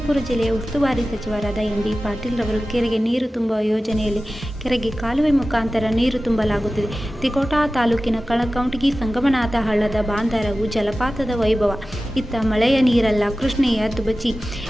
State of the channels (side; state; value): both; normal; correlation 0.95